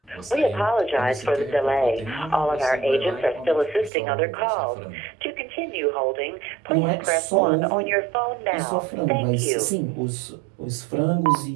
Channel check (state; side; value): drops out; left; at 3.9 s